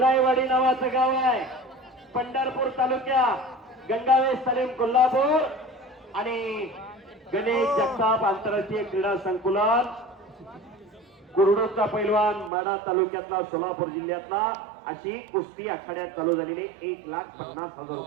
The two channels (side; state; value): left; drops out; at 12.5 s